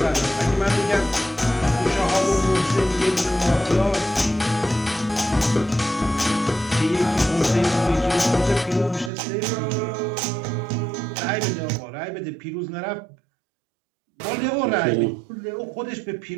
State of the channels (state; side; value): drops out; left; at 9.1 s